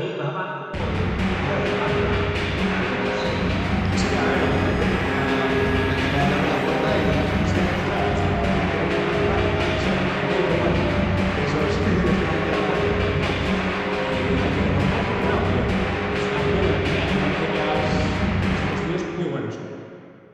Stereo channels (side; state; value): both; identical; correlation 1.00